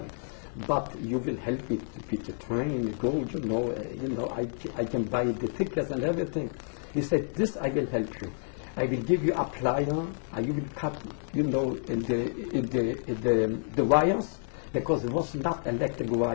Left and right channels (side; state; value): right; silent; 58 dB below the other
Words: but you will help me to pick the train, go, you know, I can buy the tickets and everything. He said, this I will help you. I will give you a plier, and you will cut, you know, the wires, because there was not electric